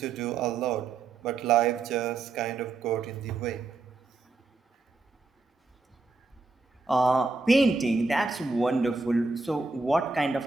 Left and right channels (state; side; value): quieter; left; 3.8 dB